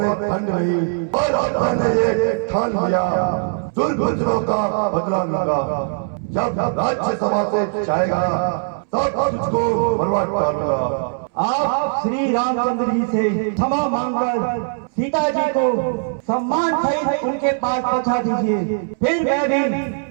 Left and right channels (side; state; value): left; silent; 66 dB below the other